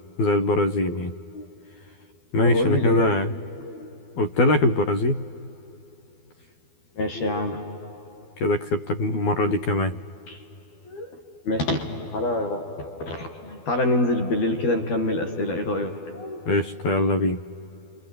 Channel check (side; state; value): right; late; 12 ms